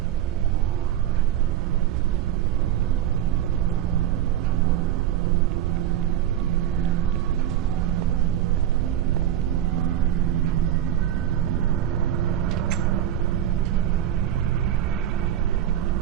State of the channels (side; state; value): left; quieter; 11.3 dB